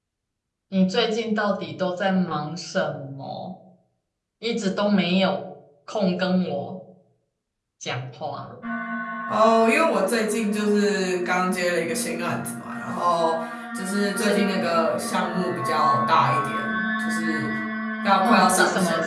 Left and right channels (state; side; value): identical; both; correlation 1.00